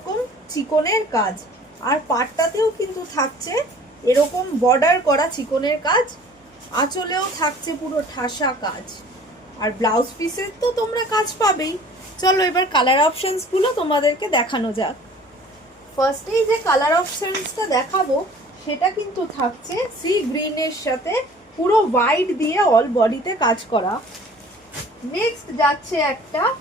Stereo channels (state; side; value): normal; both; correlation 0.49